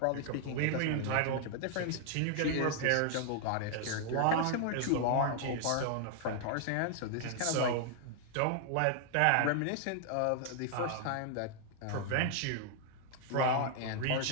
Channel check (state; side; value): different; both; correlation 0.00